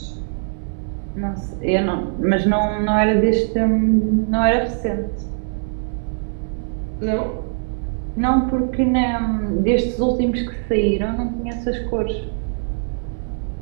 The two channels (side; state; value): left; silent; digital silence